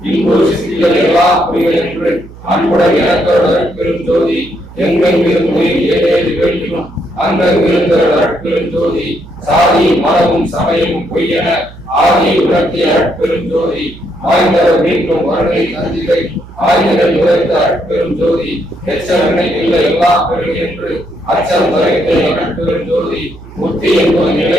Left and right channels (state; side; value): noise; right; hum, 18 dB below the sound